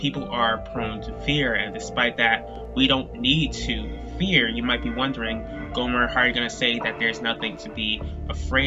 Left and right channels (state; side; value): identical; both; correlation 1.00